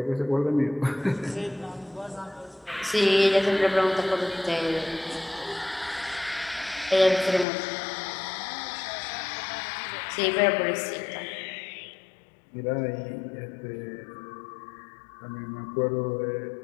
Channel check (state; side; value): drops out; right; at 7.5 s